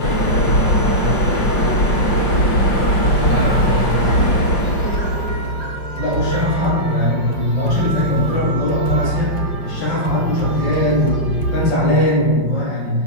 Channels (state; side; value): late; right; 5.6 ms